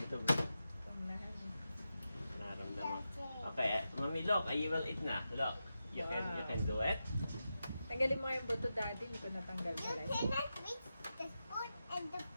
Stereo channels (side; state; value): both; inverted; correlation -0.90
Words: Panglahan. naramdaman. Okay, mami, look. I will eat na. Look. You can do it. Tanggalin mo nga yung buto, daddy. Hindi ko natanggal You pala. cannot reach the spoon and the